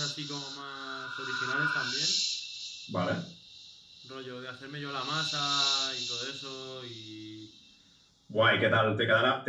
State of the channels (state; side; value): identical; both; correlation 1.00